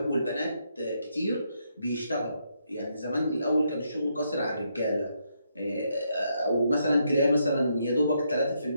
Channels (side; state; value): both; inverted; correlation -0.77